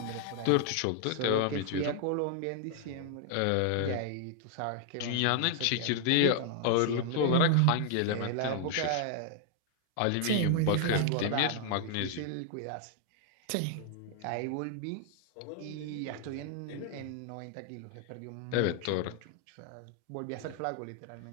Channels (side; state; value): both; different; correlation 0.00